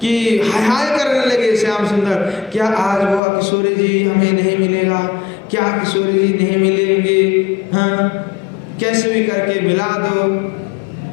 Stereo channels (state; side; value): drops out; right; at 3.2 s